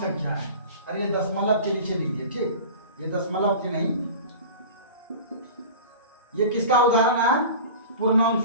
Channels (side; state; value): both; inverted; correlation -0.36